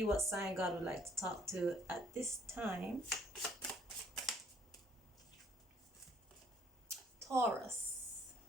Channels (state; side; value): normal; both; correlation 0.63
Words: what sign God would like to talk to at this time. Taurus.